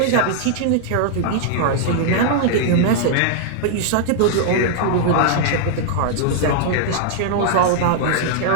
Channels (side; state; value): both; different; correlation -0.01